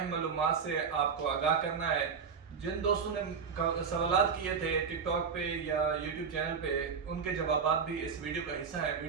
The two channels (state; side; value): quieter; left; 6.1 dB